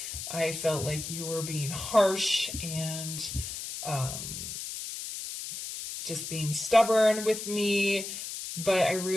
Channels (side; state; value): left; noise; hiss, 7 dB below the sound